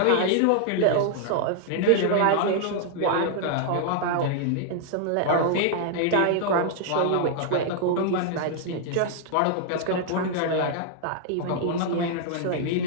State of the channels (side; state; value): both; different; correlation -0.01